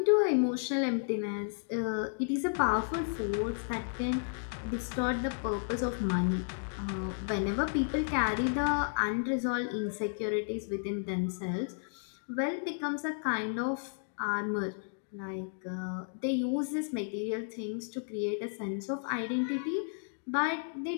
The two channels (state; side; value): silent; right; digital silence